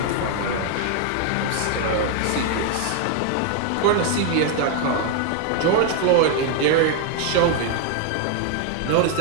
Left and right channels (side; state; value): both; different; correlation 0.00